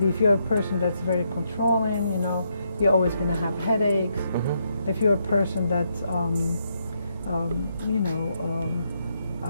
if you're a person that's very controlling, you're always gonna have headaches. mm-hmm. If you're a person that's,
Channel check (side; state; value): both; inverted; correlation -0.78